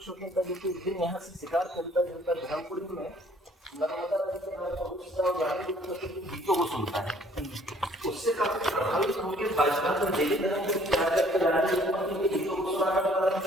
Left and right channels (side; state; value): both; normal; correlation 0.59